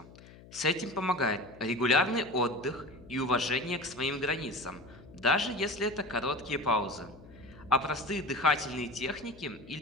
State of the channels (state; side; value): noise; left; hum, 20 dB below the sound